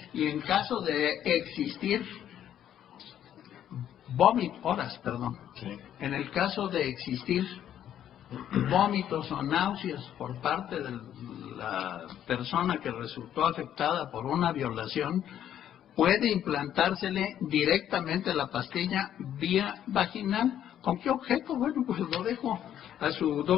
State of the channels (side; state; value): right; quieter; 10.5 dB